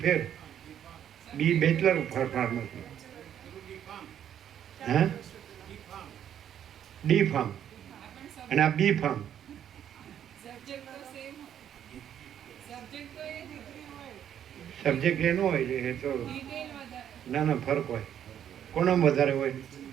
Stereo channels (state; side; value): quieter; left; 9.8 dB